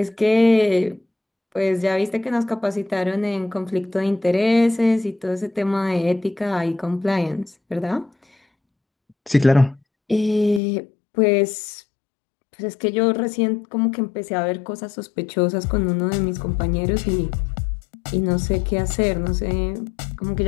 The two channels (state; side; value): drops out; right; at 10.6 s